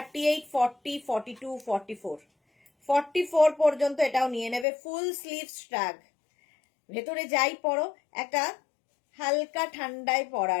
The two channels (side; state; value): right; drops out; at 4.7 s